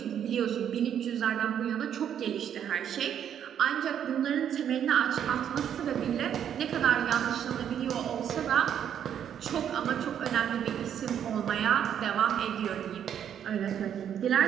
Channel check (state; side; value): quieter; left; 9.2 dB